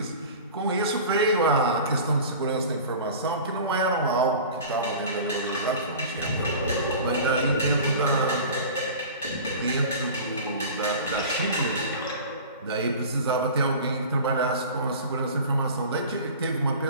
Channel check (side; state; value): both; inverted; correlation -0.38